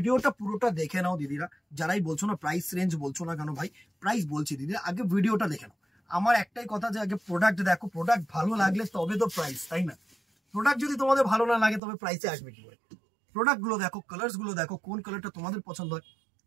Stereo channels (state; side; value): drops out; left; at 11.8 s